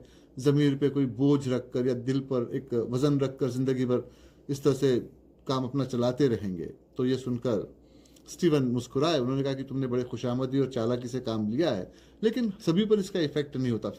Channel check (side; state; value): both; identical; correlation 1.00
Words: ज़मीर पे कोई बोझ रखकर या दिल पर एक वज़न रखकर ज़िंदगी भर इस तरह से काम अपना चलाते रहेंगे। तो ये सुनकर स्टीवन मुस्कुराए। उन्होंने कहा कि तुमने बड़े खुशामदी और चालाकी से काम लिया है, लेकिन सभी पर इसका इफेक्ट नहीं होता।